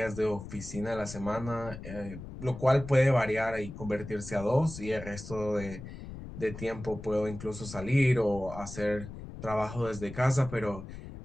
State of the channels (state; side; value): noise; left; rumble, 12 dB below the sound